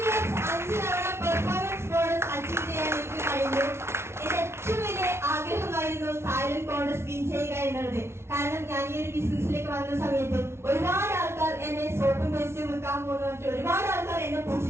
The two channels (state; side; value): late; left; 0.12 ms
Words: 5 തവണ പെർഫോമൻസ് ബോണസ് അച്ചീവ് ചെയ്യാൻ എനിക്ക് കഴിഞ്ഞു. എന്റെ ഏറ്റവും വലിയ ആഗ്രഹമായിരുന്നു തായ്ലൻഡ് കോൺഗ്രസ് വിൻ ചെയ്യുക എന്നുള്ളത്. കാരണം ഞാൻ ഈ ഒരു ബിസിനസ്സിലേക്ക് വന്ന സമയത്ത് ഒരുപാട് ആൾക്കാർ എന്നെ സോപ്പും പേസ്റ്റും വെക്കാൻ പോകുന്ന ഒരുപാട് ആൾക്കാർ എന്നെ